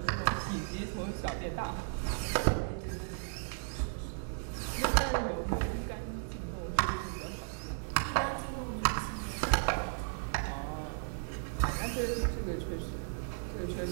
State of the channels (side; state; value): left; silent; digital silence